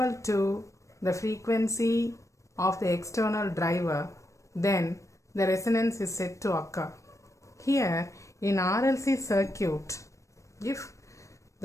to the frequency of the external driver, then the resonance is said to occur. Here in RLC circuit, if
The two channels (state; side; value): late; right; 0.15 ms